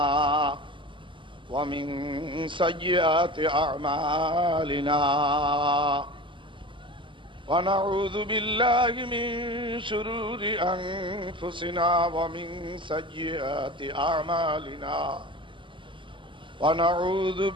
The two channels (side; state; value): left; late; 0.24 ms